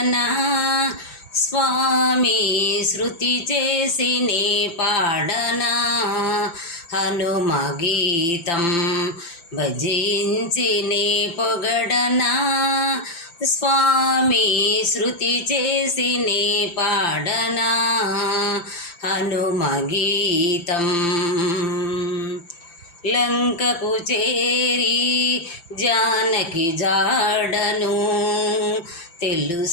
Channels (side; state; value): right; late; 5.8 ms